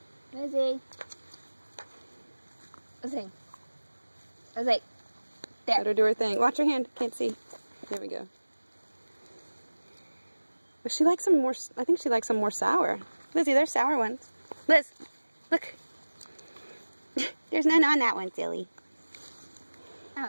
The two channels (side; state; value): both; inverted; correlation -1.00